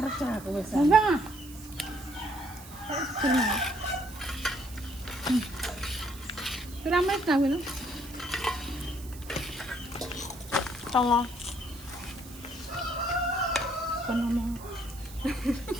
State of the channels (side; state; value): right; noise; hiss, 17 dB below the sound